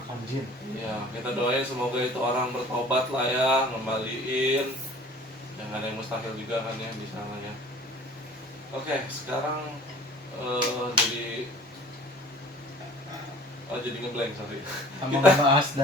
jin. Ya, kita doain semoga itu orang bertobat lah ya, ngembaliin. Yang ada yang mustahil juga kan ya di sana ya. Oke, sekarang jadi ngeblank, sorry. Sama ngebahas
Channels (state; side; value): normal; both; correlation 0.48